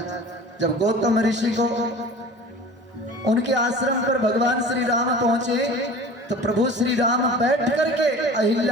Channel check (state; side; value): normal; both; correlation 0.40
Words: जब गौतम ऋषि को उनके आश्रम पर भगवान श्री राम पहुंचे तो प्रभु श्री राम बैठ करके